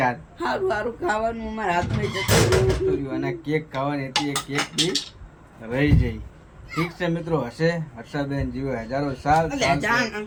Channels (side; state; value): both; identical; correlation 1.00